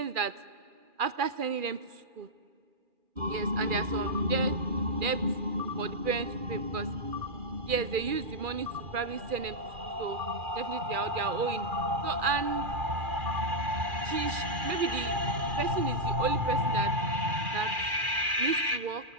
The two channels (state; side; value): late; left; 2.4 ms